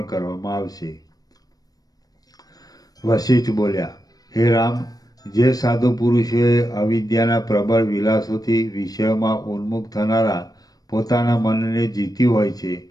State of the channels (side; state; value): right; late; 0.18 ms